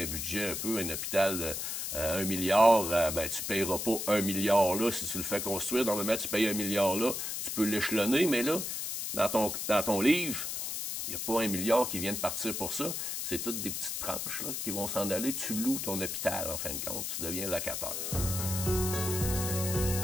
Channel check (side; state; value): left; noise; hiss, 3 dB below the sound